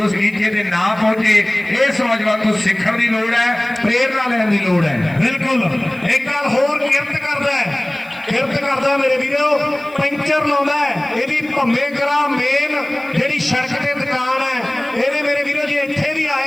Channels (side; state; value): right; noise; hiss, 27 dB below the sound